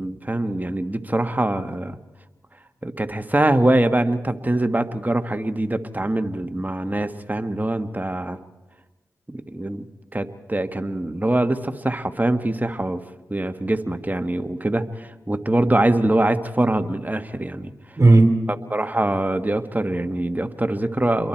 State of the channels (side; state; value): both; normal; correlation 0.95